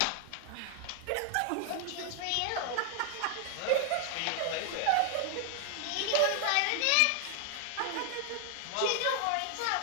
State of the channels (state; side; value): different; both; correlation 0.00